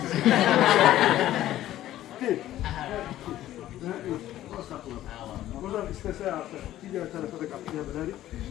Deyil. Buradan istese artık diğer tarafa da kapatabiliriz.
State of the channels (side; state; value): right; quieter; 13.6 dB